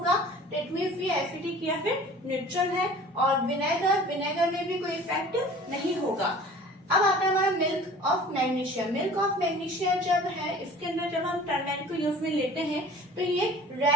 दैट मीन्स ये एसिडिक या फिर न्यूट्रल है। और विनेगर, विनेगर में भी कोई इफेक्ट नहीं होगा। अब आता है हमारा milk of magnesia. Milk of magnesia जब है इसके अंदर जब हम टर्मेरिक को यूज में लेते हैं तो ये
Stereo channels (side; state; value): both; normal; correlation 0.45